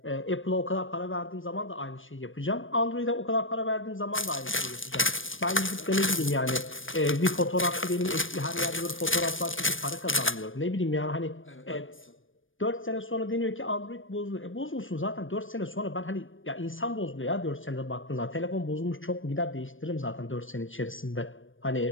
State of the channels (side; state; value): right; late; 0.57 ms